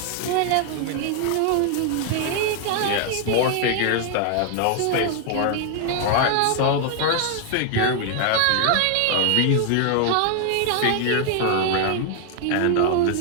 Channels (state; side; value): different; both; correlation 0.00